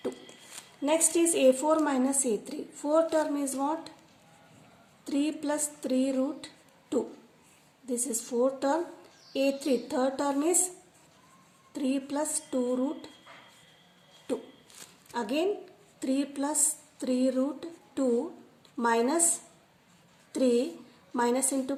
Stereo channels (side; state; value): both; identical; correlation 1.00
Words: 2. Next is a4 minus a3. Fourth term is what? 3 plus 3 root 2. This is fourth term. a3 third term is 3 plus 2 root 2. Again 3 plus 3 root 2 minus 3 minus into